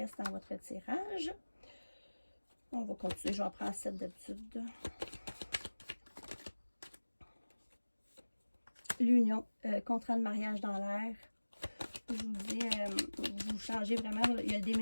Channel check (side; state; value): both; inverted; correlation -1.00